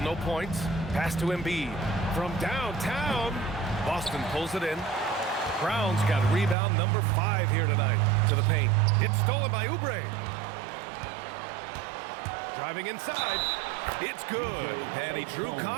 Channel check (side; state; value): left; drops out; at 6.6 s